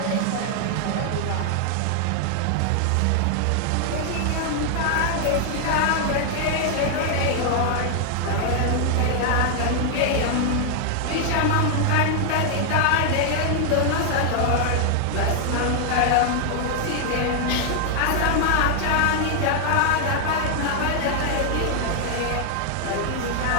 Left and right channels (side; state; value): both; different; correlation 0.00